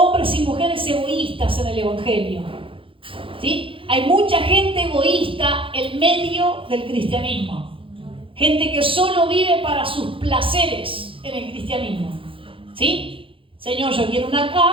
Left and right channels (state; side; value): late; left; 0.25 ms